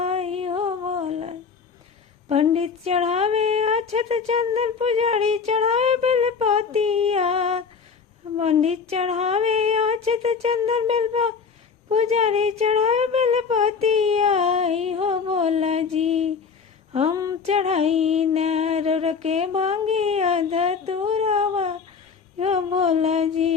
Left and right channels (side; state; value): right; quieter; 5.7 dB